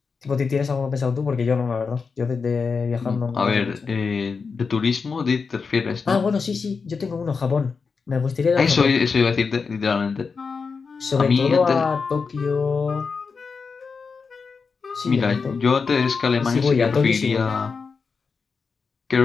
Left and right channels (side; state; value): right; quieter; 5.1 dB